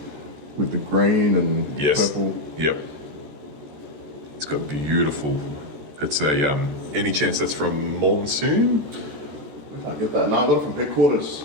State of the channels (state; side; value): late; left; 14 ms